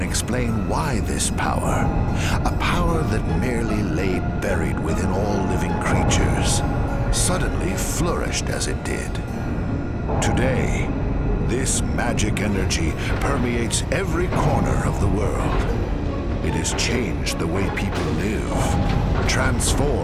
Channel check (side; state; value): both; identical; correlation 1.00